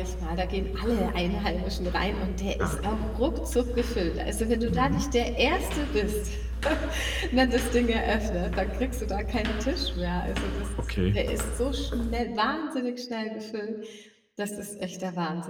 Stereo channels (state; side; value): identical; both; correlation 1.00